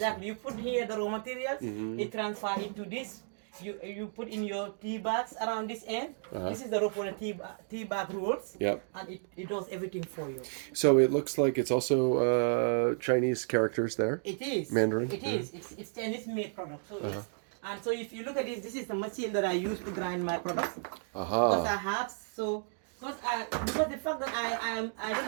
You put here the raw materials, it transfer into this. You put in your tea bags around this end. This is the rope for the tea bag rolls. Yep. And it does everything for you. So it looks like it's also Chinese characters there. It is. Mandarin. It is. It's Chinese made product. So yes. And so if you look at this is the machine that I use to grind my products. Because I have because the fact that I don't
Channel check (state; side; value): silent; left; 56 dB below the other